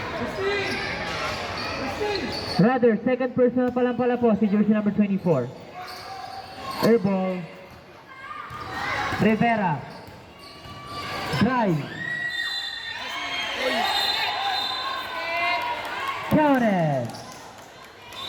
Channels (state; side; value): identical; both; correlation 1.00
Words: Rather, second personal pa lang pala po si jersey number 24. Airball. Rivera. Drive. Counted.